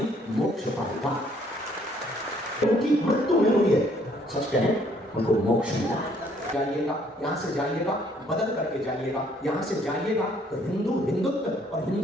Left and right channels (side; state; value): both; normal; correlation 0.64